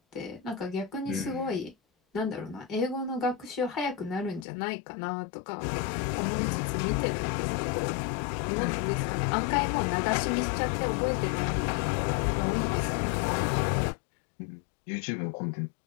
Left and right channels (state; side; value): drops out; right; at 4.5 s